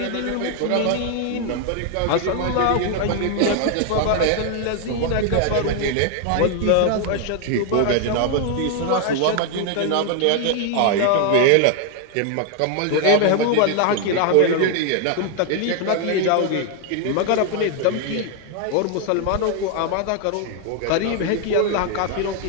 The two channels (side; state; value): both; different; correlation 0.00